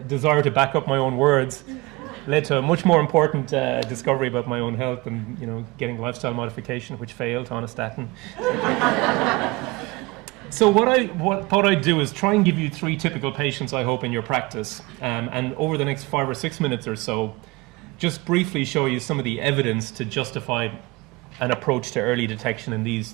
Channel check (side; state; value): left; quieter; 23.2 dB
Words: desire to back up my own words, led to a much more important discovery about my own health and, getting lifestyle modification, which failed on a statin. So what I thought I'd do is try and give you 3 typical patients, I hope, in your practice. And over the next 5 or 6 minutes or so, just briefly show you some of the evidence to justify an approach to early detection in these